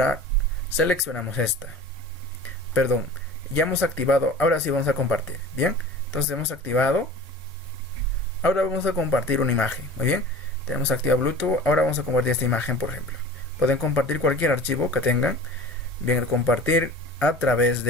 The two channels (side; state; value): both; normal; correlation 0.39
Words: seleccionamos ya hemos activado. Ahora sí vamos a compartir. Bien, entonces hemos activado. Ahora vamos a compartir una imagen. Muy bien, tenemos activado Bluetooth. Ahora vamos a compartir esta imagen, por ejemplo. Pueden compartir cualquier archivo que tengan. Bien, compartir a través